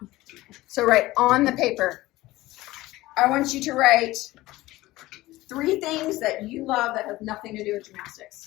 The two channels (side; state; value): right; quieter; 18.0 dB